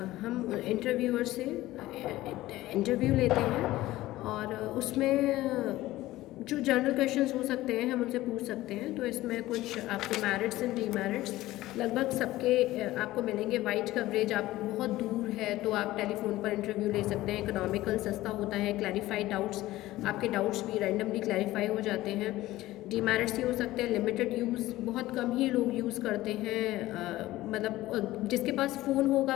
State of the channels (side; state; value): right; quieter; 16.6 dB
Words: हम इंटरव्यूअर से इंटरव्यू लेते हैं, और उसमें जो जनरल क्वेश्चंस हो सकते हैं हम उनसे पूछ सकते हैं। तो इसमें कुछ आपको मेरिट्स एंड डीमेरिट्स लगभग सबके आपको मिलेंगे। वाइड कवरेज, आप बहुत दूर है तो आप टेलीफोन पर इंटरव्यू ले सकते हैं। इकोनॉमिकल, सस्ता होता है। क्लैरिफाइड डाउट्स, आपके डाउट्स भी रैंडमली क्लैरिफाई हो जाते हैं। डीमेरिट्स ये हो सकते हैं लिमिटेड यूज़, बहुत कम ही लोग यूज़ करते हैं, मतलब जिसके पास फ़ोन होगा